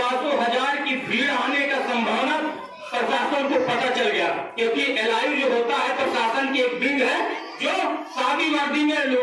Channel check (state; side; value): identical; both; correlation 1.00